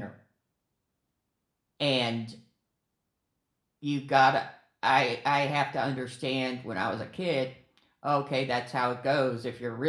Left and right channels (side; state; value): both; identical; correlation 1.00